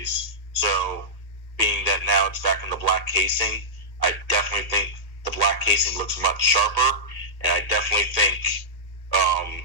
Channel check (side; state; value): right; late; 2.1 ms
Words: So being that now it's back in the black casing, I definitely think the black casing looks much sharper, and I definitely think